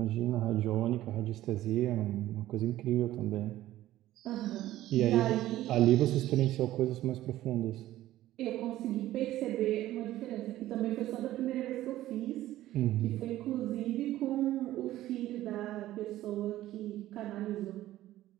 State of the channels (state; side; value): quieter; left; 14.6 dB